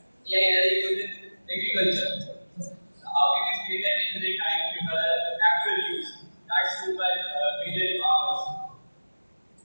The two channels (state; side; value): inverted; both; correlation -1.00